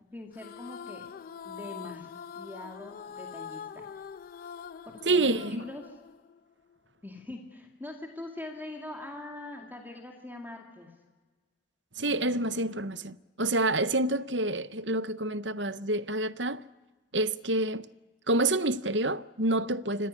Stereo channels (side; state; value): both; normal; correlation 0.05